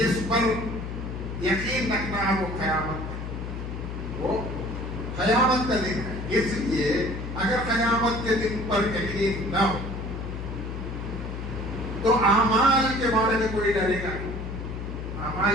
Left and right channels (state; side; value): noise; left; hum, 6 dB below the sound